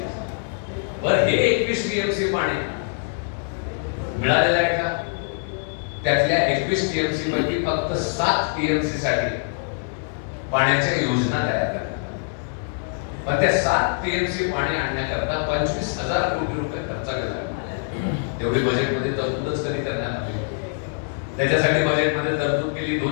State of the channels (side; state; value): right; silent; digital silence